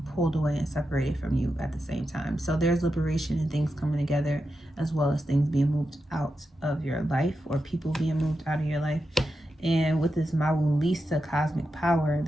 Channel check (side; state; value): both; normal; correlation 0.88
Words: pulled away and separated from you at the same time. So there's liberation and things coming together, as well as things being moved out of your life or people being moved out of your life. And with this Mawulisa cosmic power,